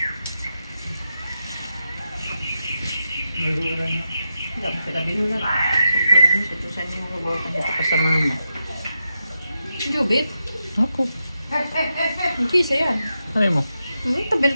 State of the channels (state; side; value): inverted; both; correlation -0.87